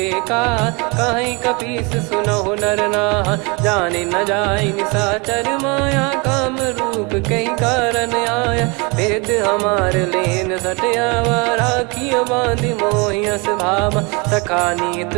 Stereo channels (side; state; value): left; quieter; 29.3 dB